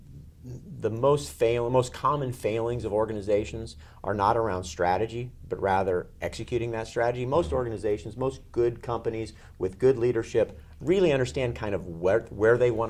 common failings of organizations are not around strategy, but rather executing that strategy. Most organizations, most good companies with good leadership really understand kind of where they want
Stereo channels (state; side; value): identical; both; correlation 1.00